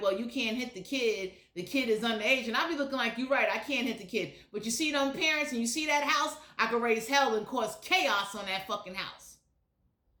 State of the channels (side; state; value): both; identical; correlation 1.00